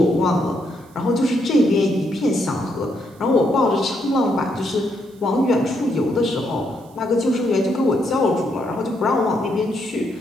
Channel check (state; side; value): noise; right; hiss, 30 dB below the sound